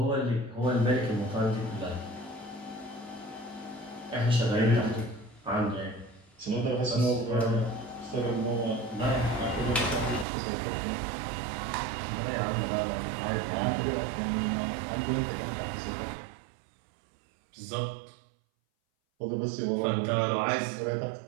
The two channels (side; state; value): left; drops out; at 10.2 s